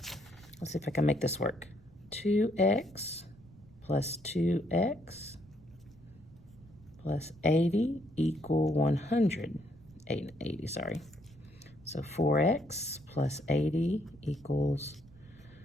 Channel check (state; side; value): noise; right; rumble, 24 dB below the sound